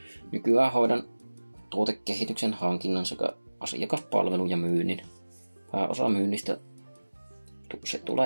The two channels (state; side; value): inverted; both; correlation -1.00